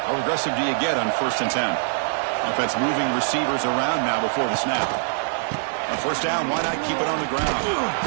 How aggressive do you get on 1st and 10? Offense moving receivers around now before the snap. On 1st down, why not keep it on the ground?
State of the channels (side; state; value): left; silent; digital silence